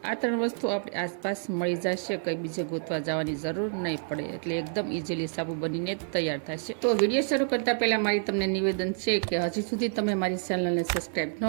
આ 3 વસ્તુ આપણે આસપાસ મળી જશે, કંઈ બીજે ગોતવા જવાની જરૂર નહીં પડે, એટલે એકદમ ઇઝીલી સાબુ બનીને તૈયાર થશે. તો વિડીયો શરૂ કરતા પહેલા મારી તમને નિવેદન છે કે હજી સુધી તમે મારી ચેનલને સબસ્ક્રાઇબ ન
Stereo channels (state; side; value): silent; left; 59 dB below the other